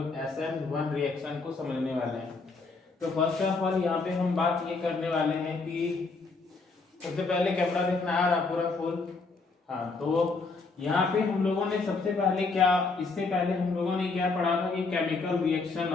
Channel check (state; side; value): quieter; right; 4.1 dB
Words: SN1 रिएक्शन को समझने वाले हैं। तो फर्स्ट ऑफ ऑल यहाँ पे हम बात ये करने वाले हैं कि सबसे पहले कैमरा देखना आ रहा पूरा फुल। हाँ, तो यहाँ पे हम लोगों ने सबसे पहले इससे पहले हम लोगों ने क्या पढ़ा था कि केमिकल रिएक्शन